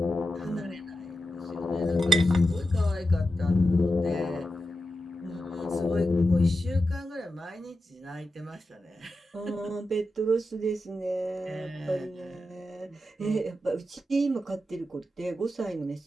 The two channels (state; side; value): normal; both; correlation 0.89